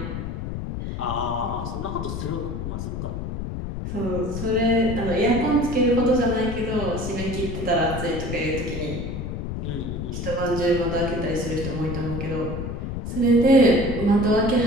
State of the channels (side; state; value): left; noise; rumble, 5 dB below the sound